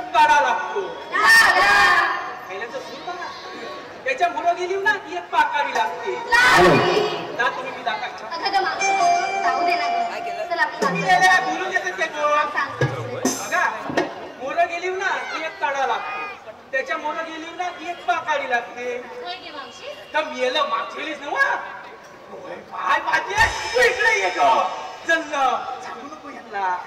काढा लागतो. त्याच्या मुलं गेली ना की एक पाकावी लागते. तुम्ही मी बोलून देतात ते बघा. मुलं गेली ना की एक काढा लागतो. त्याच्या मुलं गेली ना की एक पाकावी लागते. तर मेलं मागची गेलीच ना काय पाहिजे तू इकडे ये ग चल सांगू नको यांना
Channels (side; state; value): both; identical; correlation 1.00